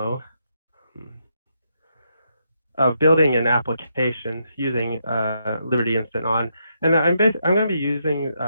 of building an application using Liberty InstantOn. And I'm going to be using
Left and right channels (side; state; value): both; inverted; correlation -0.79